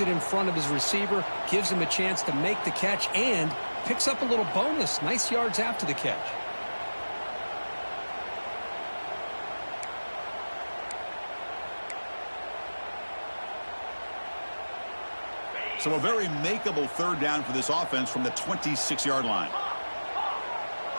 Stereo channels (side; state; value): both; inverted; correlation -1.00